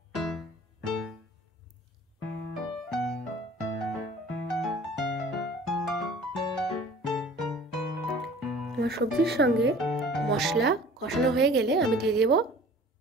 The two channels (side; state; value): both; normal; correlation 0.47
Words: আমার সবজির সঙ্গে মশলা কষানো হয়ে গেলে আমি দিয়ে দেব